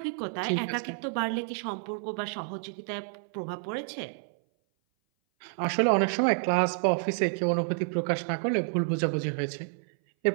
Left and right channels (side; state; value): left; silent; 57 dB below the other